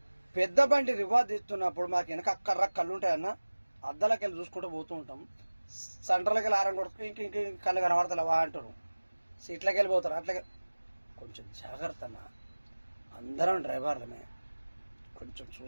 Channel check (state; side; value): inverted; both; correlation -1.00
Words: పెద్ద బండి రివాజ్ తీస్తున్నప్పుడు మాకు వెనక అక్కర్ర కళ్ళు ఉంటాయన్న, అద్దాలకి వెళ్ళి చూసుకుంటూ పోతూ ఉంటాం. సెంటర్లకి వెళ్ళి ఆరం కొడుకు ఇంక కళ్ళు కనబడతలేవా అంటారు. సీట్లకి వెళ్ళిపోతారు. అట్లాగే కొంచెం జాగ్రత్త అన్న, అందరం డ్రైవర్లమే, కొంచెం